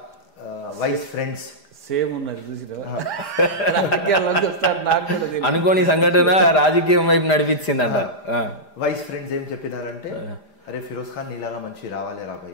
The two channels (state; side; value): late; right; 5.0 ms